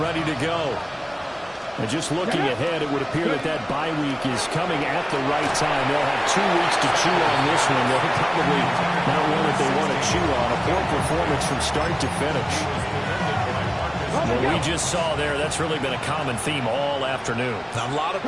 to go. And just looking ahead, it would appear that that bye week is coming at the right time. They'll have 2 weeks to chew on this one. They'll probably not one that they want to chew on. A poor performance from start to finish. What we just saw there, that's really been a common theme all afternoon. A lot of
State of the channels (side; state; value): both; identical; correlation 1.00